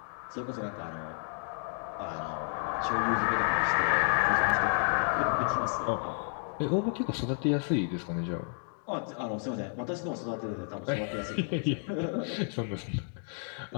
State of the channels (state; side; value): silent; right; 57 dB below the other